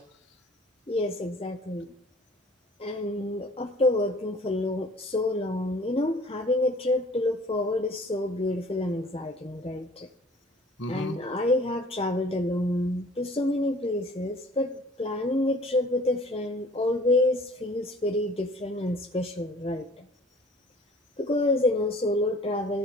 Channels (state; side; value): normal; both; correlation 0.51